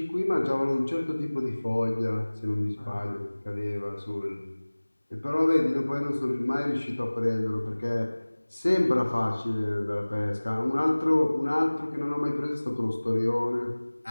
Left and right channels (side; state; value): both; inverted; correlation -1.00